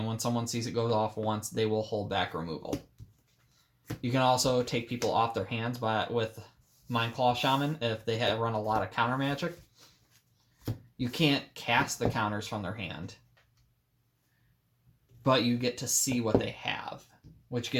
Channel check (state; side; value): identical; both; correlation 1.00